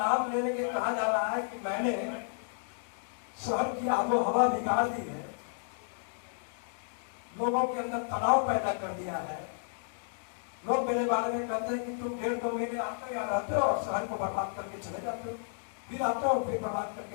लेने के कहा जा रहा है कि मैंने शहर की आबो हवा बिगाड़ दी है, लोगों के अंदर तनाव पैदा कर दिया है। लोग मेरे बारे में कहते हैं कि तुम 1.5-2 महीने आते हो, यहाँ रहते हो और शहर को बर्बाद करके चले जाते हो, फिर आते हो फिर बर्बाद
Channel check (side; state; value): right; silent; digital silence